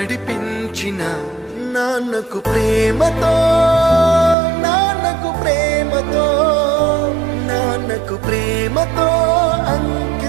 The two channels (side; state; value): left; drops out; at 4.4 s